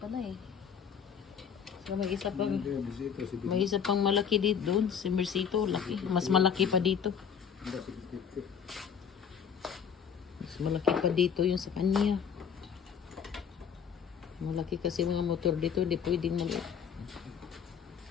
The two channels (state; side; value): quieter; right; 7.5 dB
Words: eh. So may isa pang malaki dito doon. Si Mercito, laki. Mas malaki pa dito. Mas malaki pa dito yung sa kanya. Malaki kasi mga motor dito. Hindi pwedeng maliit.